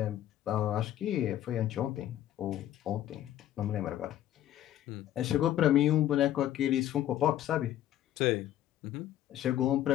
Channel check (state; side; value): quieter; right; 12.2 dB